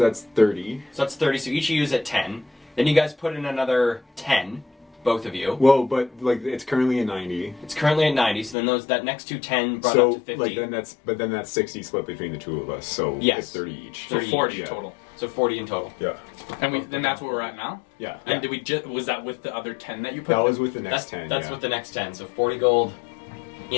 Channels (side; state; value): right; drops out; at 8.6 s